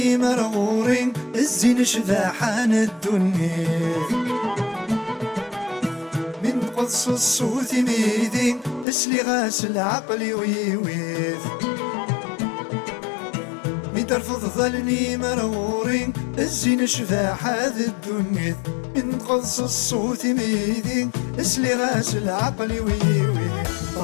مرغورين الزين شذاحان الدنيا من قدس الصوت ميدين اسلي غاسل عقلي ويويث من ترفض ظلني مرغورين الزين شذاح هذا الدنيا من قدس الصوت ميدين اسلي غاسل عقلي ويويث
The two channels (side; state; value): right; drops out; at 8.8 s